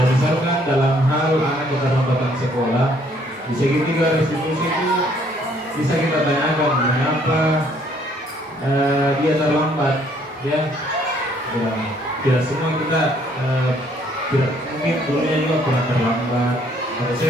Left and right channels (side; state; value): both; normal; correlation 0.64